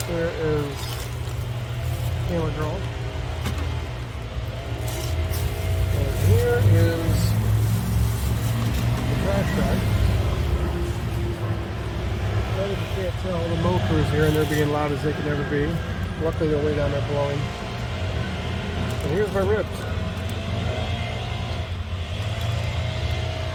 There is Camera Girl. And here is the trash bag. If you can't tell, the mow crew's here and they're being loud as they can ever be. Luckily they're way down there blowing. And here's my ribs.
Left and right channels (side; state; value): both; identical; correlation 1.00